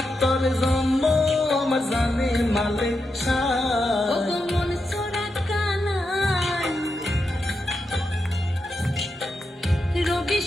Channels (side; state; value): both; normal; correlation 0.86